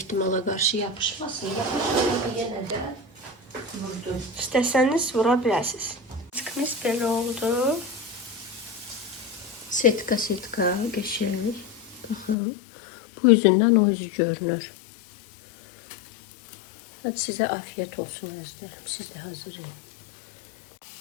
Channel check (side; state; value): right; drops out; at 12.4 s